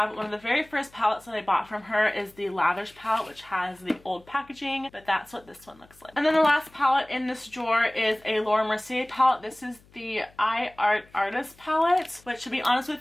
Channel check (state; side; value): noise; left; hum, 28 dB below the sound